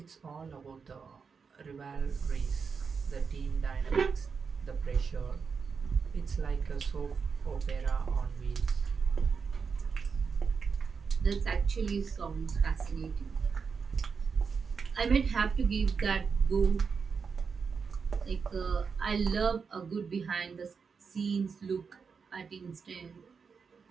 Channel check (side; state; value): left; quieter; 5.6 dB